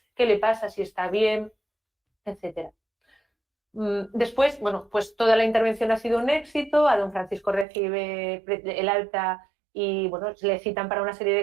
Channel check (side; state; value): left; drops out; at 7.7 s